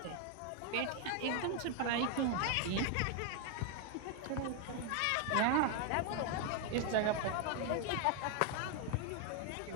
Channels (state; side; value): different; both; correlation 0.01